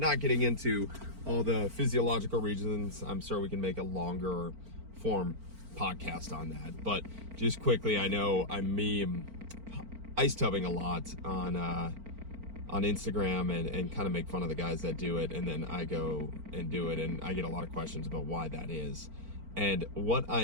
getting into all the physiological reasons. I'm sure we can make a longer form podcast on that. But just quickly, I know I meme ice tubbing a lot on Instagram and kind of make fun of the guys that do it, and then I go and do it, and I get a lot of questions about why that is. And what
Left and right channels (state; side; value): late; left; 4.4 ms